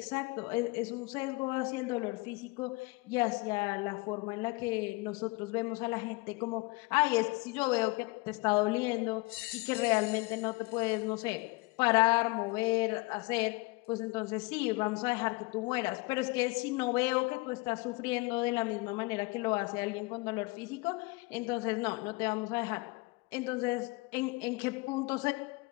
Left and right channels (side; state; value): right; quieter; 25.1 dB